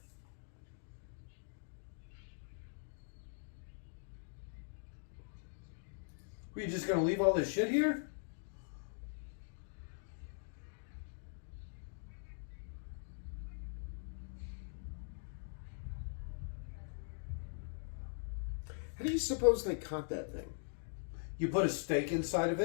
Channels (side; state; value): right; silent; digital silence